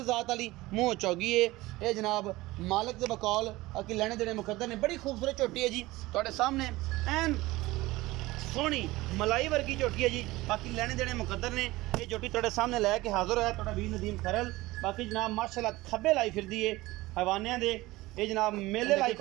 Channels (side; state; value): left; quieter; 19.3 dB